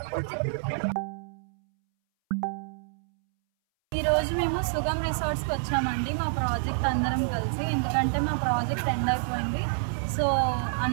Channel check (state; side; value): silent; left; 60 dB below the other